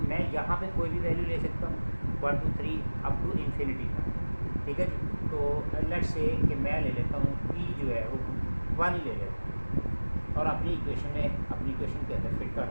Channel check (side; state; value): both; inverted; correlation -1.00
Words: मैं यहाँ पे कोई भी वैल्यू ले सकता हूँ 1 2 3 अप टू इन्फिनिटी तक। ठीक है जी। तो लेट्स से कि मैं ले लेता हूँ p जो है वो 1 ही ले लेता हूँ और अपनी इक्वेशन के अंदर फिट कर